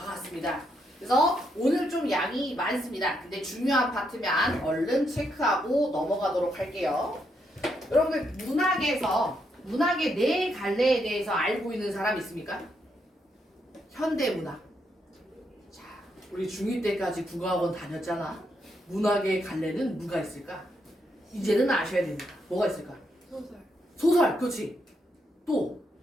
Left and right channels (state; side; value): normal; both; correlation 0.78